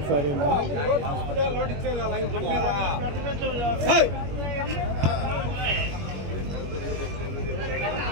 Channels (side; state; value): left; late; 21 ms